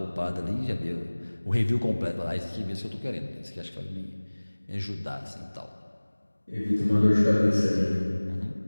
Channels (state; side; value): inverted; both; correlation -1.00